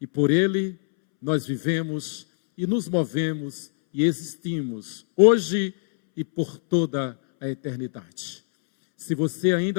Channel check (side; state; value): right; silent; 63 dB below the other